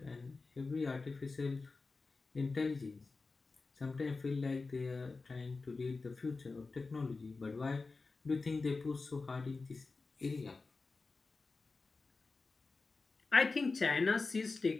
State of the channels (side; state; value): right; quieter; 3.9 dB